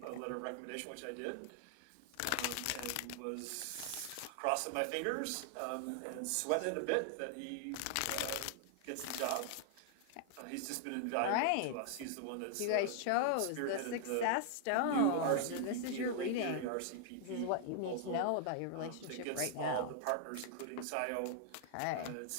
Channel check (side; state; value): both; different; correlation 0.00